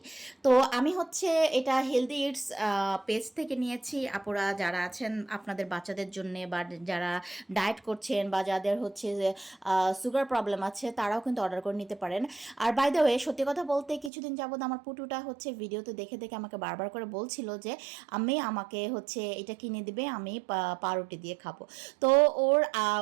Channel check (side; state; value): left; drops out; at 14.1 s